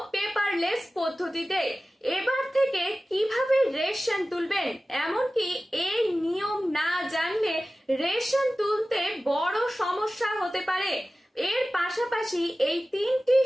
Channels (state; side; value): normal; both; correlation 0.96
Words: পেপারলেস পদ্ধতিতে। এবার থেকে কিভাবে রেশন তুলবেন, এমনকি এই নিয়ম না জানলে রেশন তুলতে বড় সমস্যা হতে পারে। এর পাশাপাশি এই তিনটি